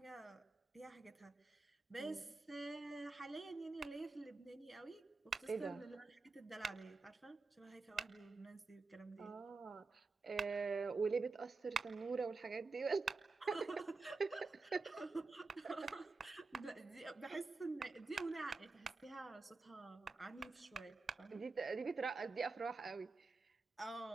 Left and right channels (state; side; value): quieter; left; 3.9 dB